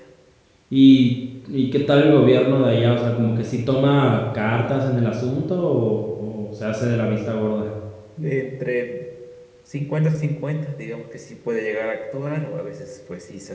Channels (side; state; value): both; identical; correlation 1.00